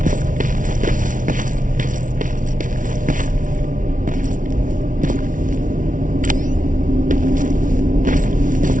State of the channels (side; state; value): left; late; 0.38 ms